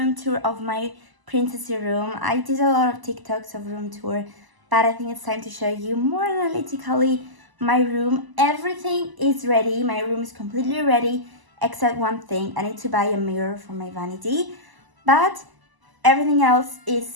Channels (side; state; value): left; late; 1.0 ms